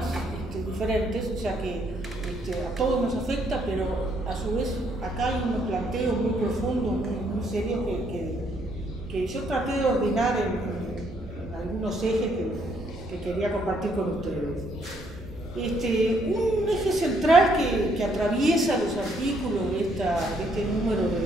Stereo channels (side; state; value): both; normal; correlation 0.70